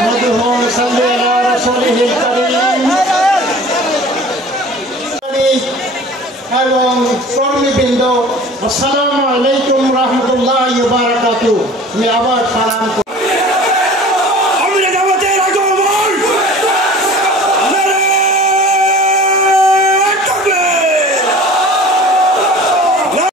ওয়া সাল্লি আলা রাসূলিহিল কারীম এবং কর্মীবৃন্দ, আসসালামু আলাইকুম রাহমাতুল্লাহি ওয়া বারাকাতুহু। আমি আবার সালাম করি।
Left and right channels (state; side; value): normal; both; correlation 0.43